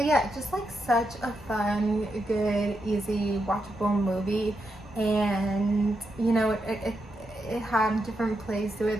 yeah, just like such a fun, good, easy, watchable movie, and it had different plays to it,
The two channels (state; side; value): normal; both; correlation 0.84